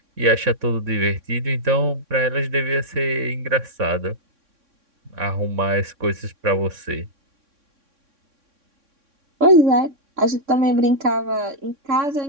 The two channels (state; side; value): late; left; 3.6 ms